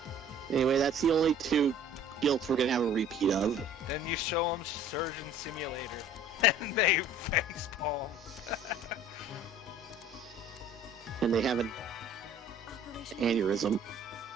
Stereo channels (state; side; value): normal; both; correlation 0.50